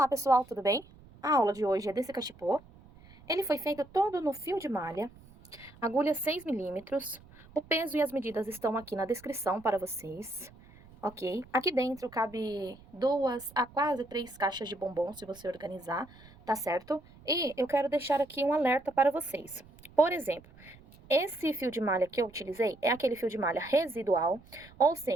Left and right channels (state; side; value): noise; right; rumble, 23 dB below the sound